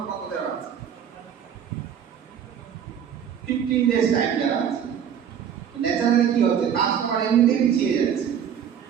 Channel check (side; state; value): left; quieter; 8.5 dB